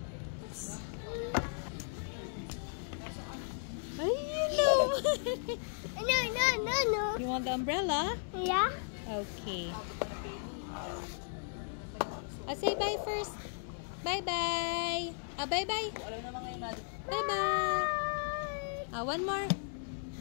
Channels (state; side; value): silent; right; digital silence